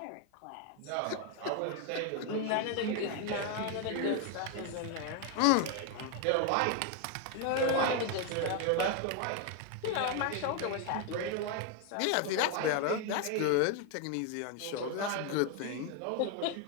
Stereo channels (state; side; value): different; both; correlation 0.01